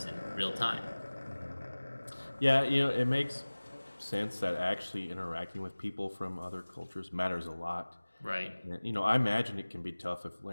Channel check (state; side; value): inverted; both; correlation -1.00